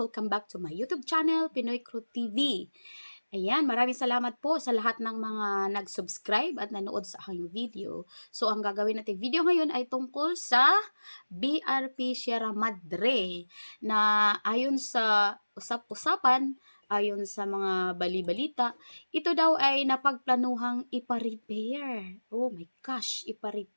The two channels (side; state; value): both; inverted; correlation -1.00